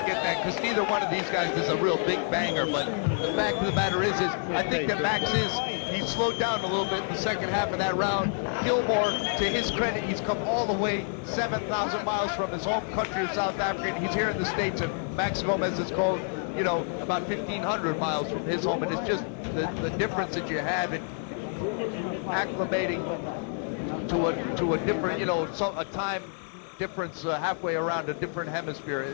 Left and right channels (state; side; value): silent; right; 59 dB below the other